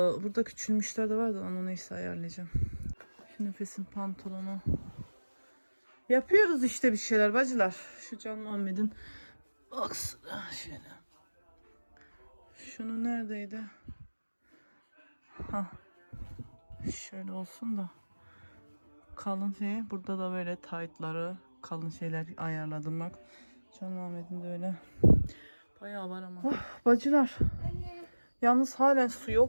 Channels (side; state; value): both; inverted; correlation -1.00